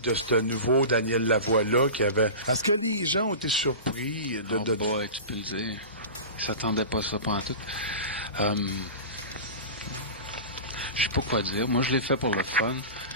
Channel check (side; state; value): both; inverted; correlation -0.30